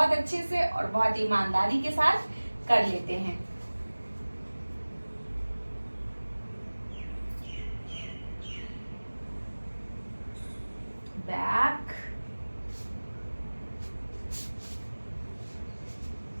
अच्छे से और बहुत ईमानदारी के साथ कर लेते हैं। बैक,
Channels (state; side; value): inverted; both; correlation -1.00